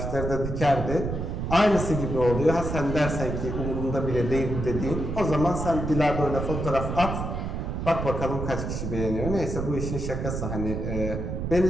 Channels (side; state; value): right; noise; rumble, 3 dB below the sound